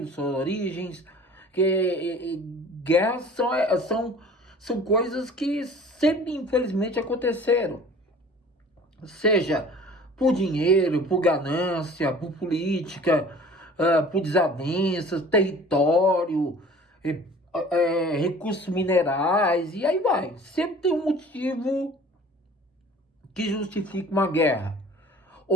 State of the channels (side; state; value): both; normal; correlation 0.46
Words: suas origens. Guerras são coisas que sempre, infelizmente, aconteceram. Seja por dinheiro, por ganância, por política, por desavenças, território, recursos minerais, e aí vai. Sempre tem um motivo que justifica uma guerra.